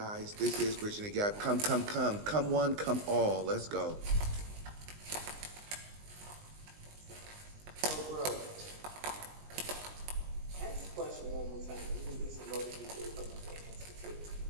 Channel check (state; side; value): late; left; 19 ms